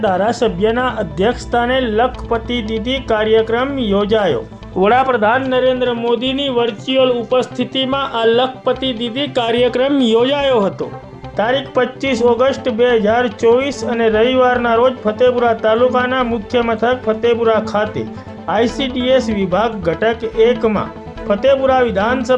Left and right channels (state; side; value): identical; both; correlation 1.00